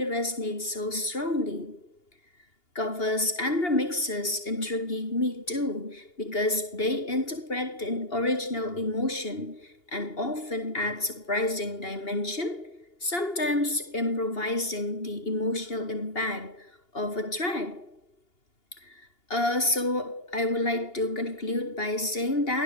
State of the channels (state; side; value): late; right; 2.8 ms